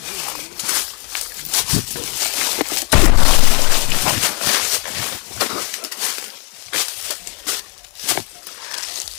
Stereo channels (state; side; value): quieter; right; 33.0 dB